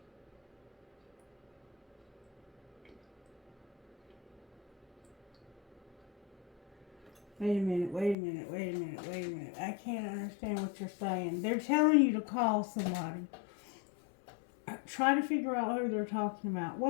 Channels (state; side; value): drops out; right; at 8.2 s